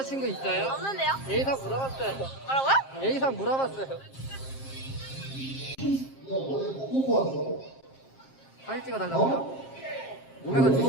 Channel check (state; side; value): late; right; 7.5 ms